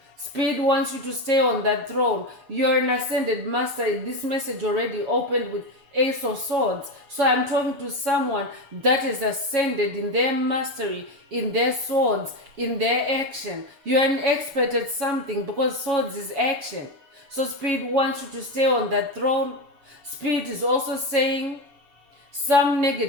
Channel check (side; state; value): left; late; 6.9 ms